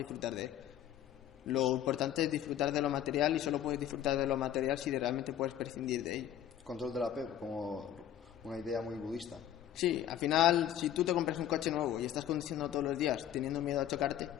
de él. Lo importante es disfrutar de lo material, y solo puedes disfrutar de lo material si realmente puedes prescindir de ello. Control del apego, como una idea muy budista. Sí, al final, si tú te compras un coche nuevo y estás conduciendo todos los días teniendo miedo a chocarte,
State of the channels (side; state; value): right; quieter; 10.9 dB